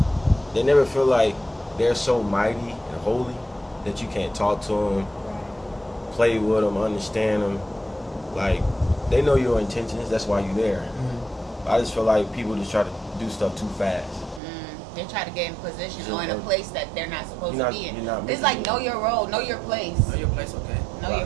feel like they're so mighty and holy that you can't talk to them, play with them, understand them. Like they know your intentions. That's why you're there. I just feel like people just try to do stuff too fast. They try to get in position So, or in a place that they're not supposed you're to not- be in. you're not It's making like it. know your role, know your place, Know your place, okay. know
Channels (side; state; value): left; drops out; at 14.4 s